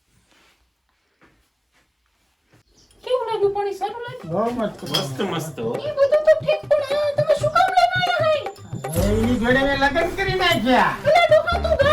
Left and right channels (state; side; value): identical; both; correlation 1.00